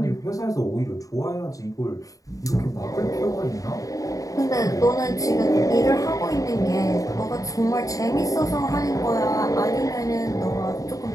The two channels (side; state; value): right; late; 0.16 ms